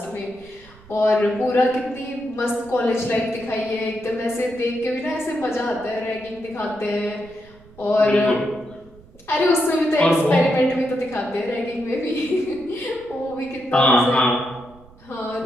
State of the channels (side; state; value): right; noise; rumble, 24 dB below the sound